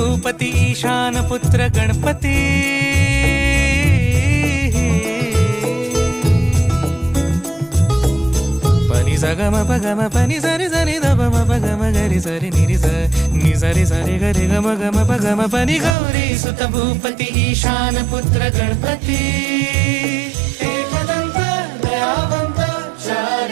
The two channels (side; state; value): left; drops out; at 16.0 s